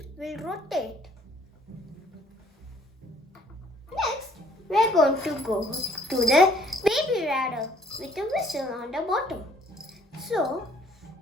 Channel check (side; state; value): both; normal; correlation 0.60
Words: will rotate. Next, we are going to go to the baby radar with a whistle on the bottom. So,